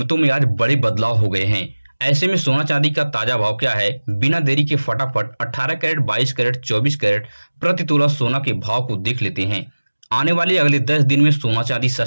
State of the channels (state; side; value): inverted; both; correlation -1.00